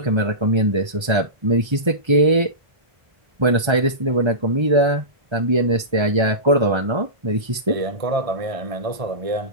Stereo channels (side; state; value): left; late; 1.3 ms